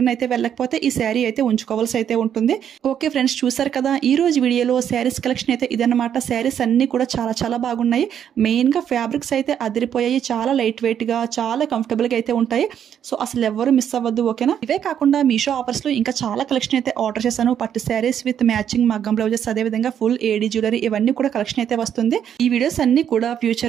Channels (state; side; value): quieter; left; 9.1 dB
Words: అయితే వెళ్ళకపోతే ఈ శారీ అయితే ఉంచుకోవాల్సి అయితే ఉంటుంది. ఓకే ఫ్రెండ్స్, చూసారు కదా ఈ రోజు వీడియోలో శారీస్ కలెక్షన్ అయితే ఇదన్నమాట. శారీస్ అన్ని కూడా చాలా చాలా బాగున్నాయి. మెయిన్ గా ఫ్యాబ్రిక్స్ అయితే అదిరిపోయాయి. చాలా లైట్ వెయిట్ గా, చాలా కంఫర్టబుల్ గా అయితే ఉంటాయి. సో అసలు ఎవరు మిస్ అవ్వద్దు. ఓకేనా. ఇవే కాకుండా మీషో ఆఫర్స్ లో ఇంకా చాలా కలెక్షన్ అయితే ఆర్డర్ చేశాను. పట్టు శారీస్ విత్ మ్యాచింగ్ మగ్గం బ్లౌజెస్, అదే విధంగా ఫుల్ ఏడీ జ్యువెలరీ, ఇవన్నీ కూడా కలెక్షన్ అయితే వస్తుంది. ఈ వీడియోస్ అన్ని కూడా